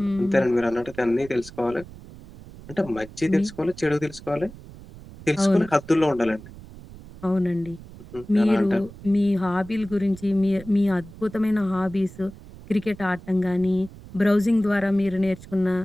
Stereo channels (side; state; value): right; noise; rumble, 17 dB below the sound